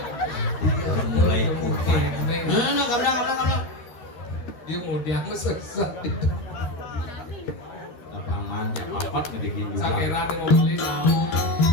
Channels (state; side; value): late; right; 13 ms